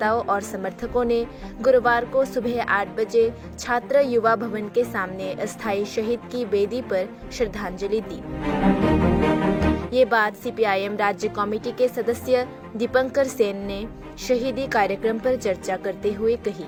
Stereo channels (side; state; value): both; identical; correlation 1.00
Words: और समर्थकों ने गुरुवार को सुबह 8 बजे छात्र युवा भवन के सामने अस्थायी शहीद की वेदी पर श्रद्धांजलि दी। ये बात सीपीआईएम राज्य कमेटी के सदस्य दीपंकर सेन ने शहीदी कार्यक्रम पर चर्चा करते हुए कही।